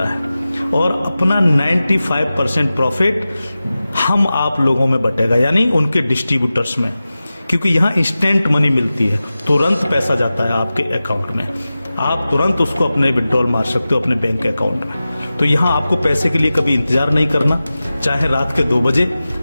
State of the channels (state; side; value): inverted; both; correlation -0.95